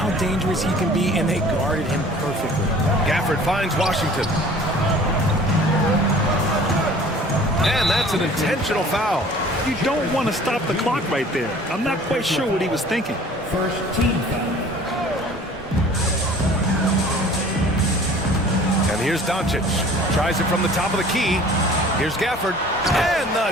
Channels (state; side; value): normal; both; correlation 0.48